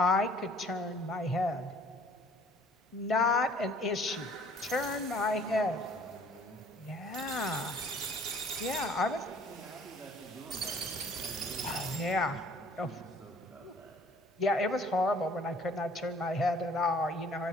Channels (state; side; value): normal; both; correlation 0.55